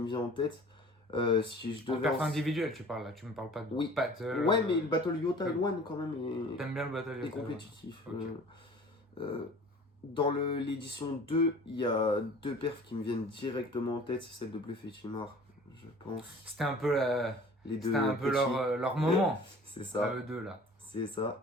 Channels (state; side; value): normal; both; correlation 0.46